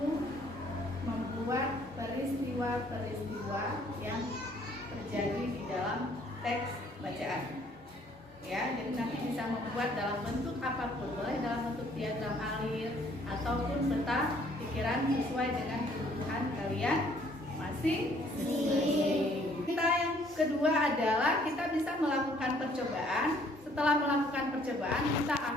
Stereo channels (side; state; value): both; normal; correlation 0.61